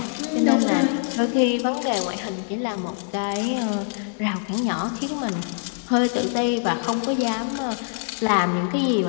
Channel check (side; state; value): right; silent; digital silence